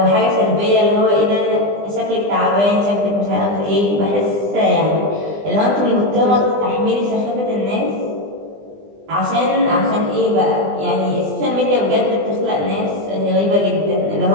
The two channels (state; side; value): late; left; 20 ms